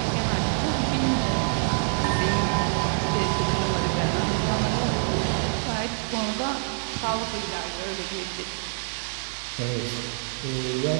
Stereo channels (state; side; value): silent; left; 61 dB below the other